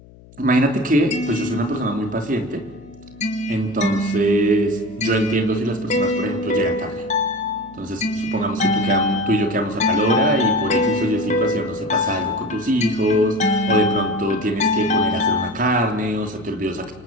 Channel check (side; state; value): left; noise; hum, 23 dB below the sound